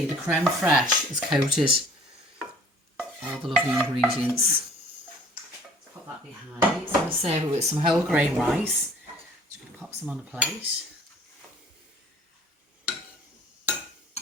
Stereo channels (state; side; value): normal; both; correlation 0.51